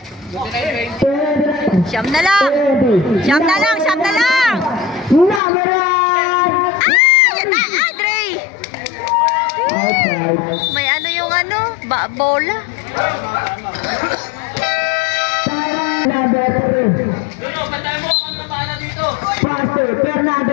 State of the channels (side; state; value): right; drops out; at 5.4 s